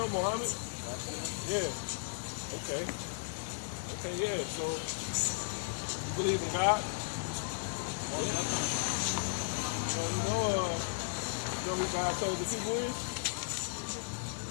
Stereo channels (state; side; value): silent; right; digital silence